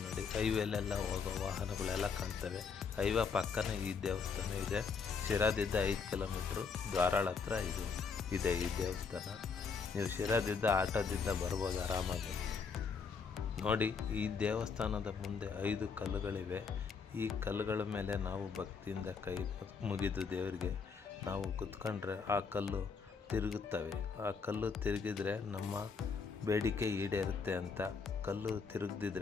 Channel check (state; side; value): quieter; right; 5.5 dB